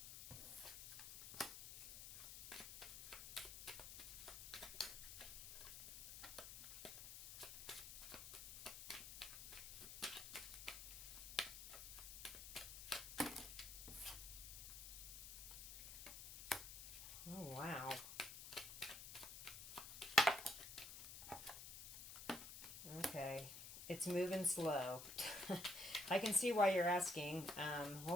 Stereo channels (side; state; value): left; noise; hiss, 10 dB below the sound